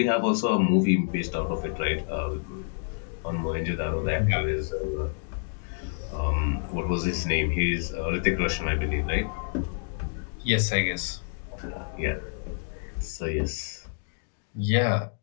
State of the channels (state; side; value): silent; right; digital silence